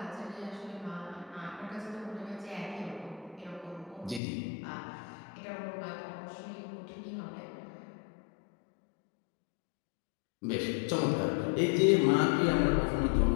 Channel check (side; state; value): right; drops out; at 4.2 s